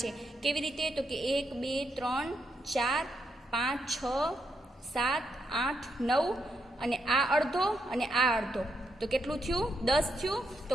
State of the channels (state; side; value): normal; both; correlation 0.80